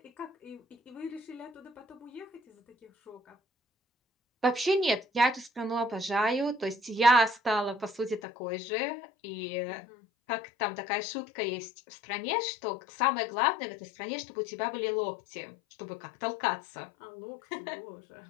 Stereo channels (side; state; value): right; drops out; at 8.2 s